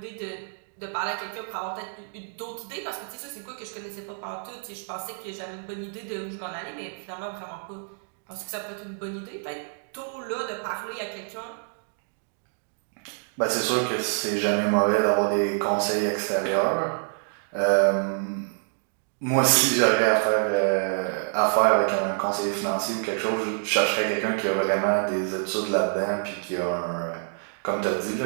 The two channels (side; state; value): left; silent; digital silence